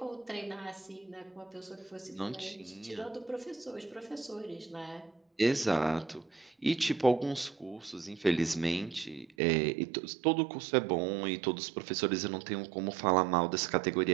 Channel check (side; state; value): left; drops out; at 9.3 s